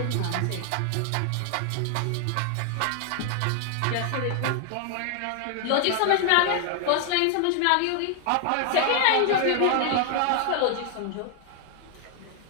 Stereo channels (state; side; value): different; both; correlation 0.00